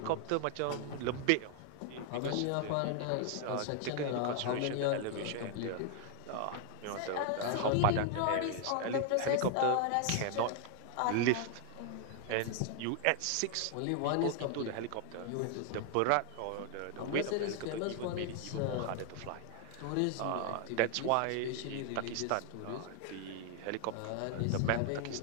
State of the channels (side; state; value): both; different; correlation 0.00